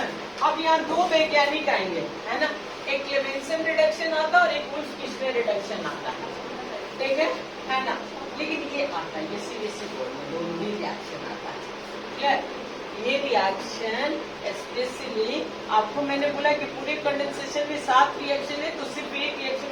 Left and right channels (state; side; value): identical; both; correlation 1.00